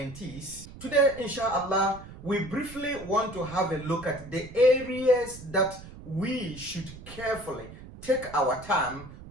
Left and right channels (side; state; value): right; noise; rumble, 16 dB below the sound